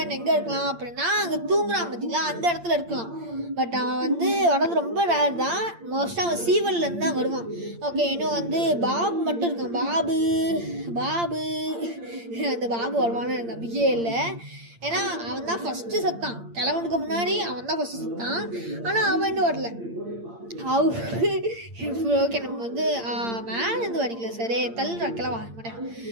எங்கே இருக்கலாம் அப்படின்னா அங்கே தூங்குறான் பார்த்தீங்களா, அந்த இடத்துல இருக்கலாம். பட் அவன் வந்து வரது ரொம்ப ரேர் தான். மோஸ்ட்டாக அவன் சீவல்லேருந்து தான் வருவான். ஓகே, இன்னும் வந்து பாபு மட்டும் இருக்கான். பாபு அந்த பாபு வருவான்னு எனக்கு நம்பிக்கையே இல்லை. ஏன்னா அவன் தான் ஃபஸ்ட்டு செத்தான், கிழவனுக்கு முன்னாடி அவன் தான் ஃபஸ்ட்டு செத்தான். ஆனால் அவன் இன்னும் வரல. ஓகே, நம்ம வந்து மேலேருந்து வடிக்கல, சரி தள்ளுறா கிளவா மாட்டேன்.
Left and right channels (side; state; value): left; late; 8.7 ms